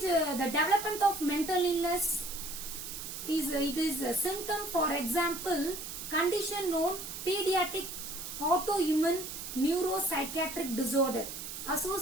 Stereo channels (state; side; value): noise; right; hiss, 8 dB below the sound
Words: the development of mental illness is a symptom. For example, condition known pediatric autoimmune neuropsychiatric disorder